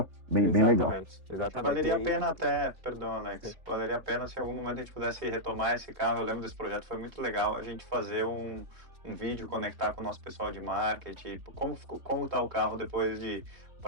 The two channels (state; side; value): late; left; 3.4 ms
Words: bem legal. Exatamente. Valeria a pena até, perdão, Alex, valeria a pena se em algum momento a gente pudesse retomar esse carro. Eu lembro desse projeto, foi muito legal a gente fazer um vídeo, conectar com o nosso pessoal de marketing, como está o carro depois de